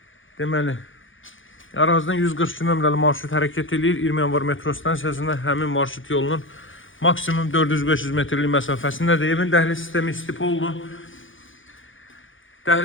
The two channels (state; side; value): late; right; 0.57 ms